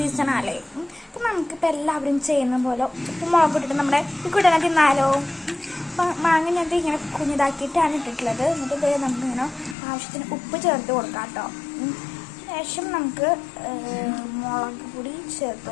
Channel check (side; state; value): right; drops out; at 9.8 s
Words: ആണല്ലേ. അപ്പം നമുക്കിപ്പോൾ എല്ലാവരും ചെയ്യുന്ന പോലെ ഉപ്പ് മുളക് ഇട്ടിട്ട് നമ്മുടെ ഈ കുട്ടനെ തിന്നാലോ. അപ്പം മാങ്ങ ഞാൻ ഇങ്ങനെ കുഞ്ഞിതാക്കിയിട്ടാണ് ഇട്ടിട്ടുള്ളത്. എന്നിട്ട് നമുക്കിങ്ങനെ ആവശ്യത്തിന് ഉപ്പ് ചേർത്ത് കൊടുക്കാം കേട്ടോ. ശേഷം നമുക്ക് മുളക് പൊടി ചേർത്ത്